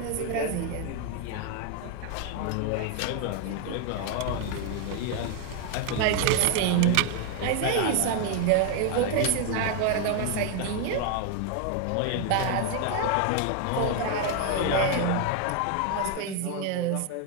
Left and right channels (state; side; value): different; both; correlation 0.01